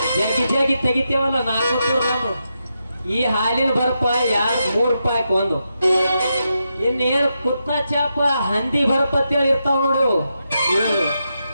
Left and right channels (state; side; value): inverted; both; correlation -0.85